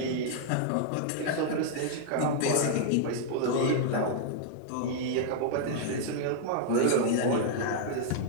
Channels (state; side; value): different; both; correlation -0.01